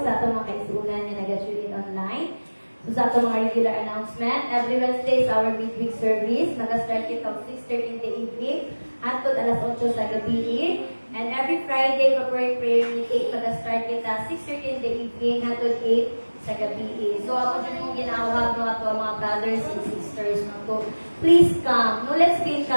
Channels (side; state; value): both; inverted; correlation -1.00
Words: sa atong mga kaisunan na nag-tune in online. So sa atong mga regular announcement, every Wednesday is our midweek service. Mag-start it of 6:30 in the evening hangtod alas 8 sa gabi. And every Friday, corporate prayer meeting, mag-start it at 6:30 in the evening hangtod 8 sa gabi. So ako dyan mong ginawag no ato mga brothers and sisters no to please come. No, let's be